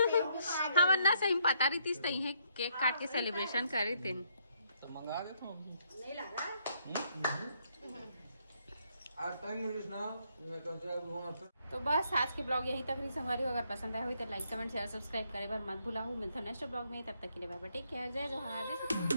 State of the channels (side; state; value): both; inverted; correlation -0.72